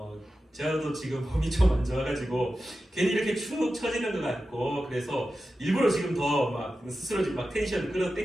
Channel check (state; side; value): normal; both; correlation 0.92